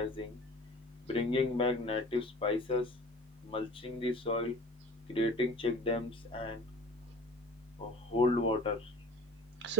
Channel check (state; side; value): normal; both; correlation 0.40